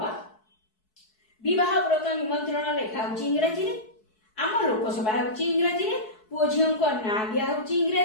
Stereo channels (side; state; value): right; late; 4.6 ms